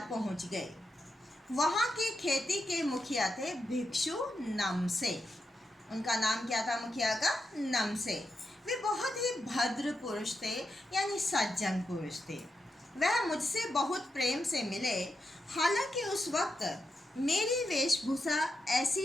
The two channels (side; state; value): both; normal; correlation 0.86